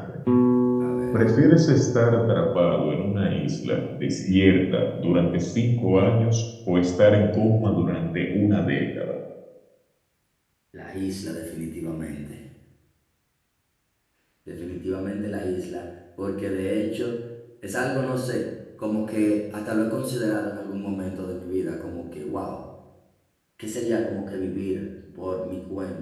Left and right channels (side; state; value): both; identical; correlation 1.00